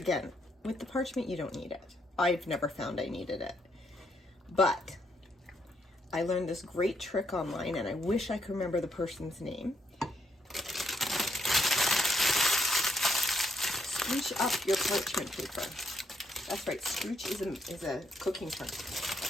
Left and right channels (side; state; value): both; normal; correlation 0.75